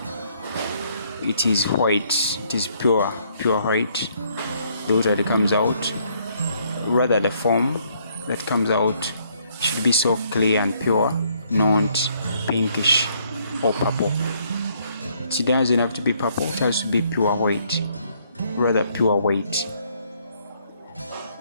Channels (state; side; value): inverted; both; correlation -0.68